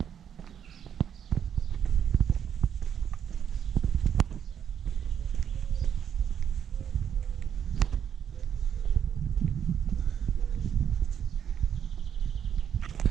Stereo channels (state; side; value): quieter; left; 8.5 dB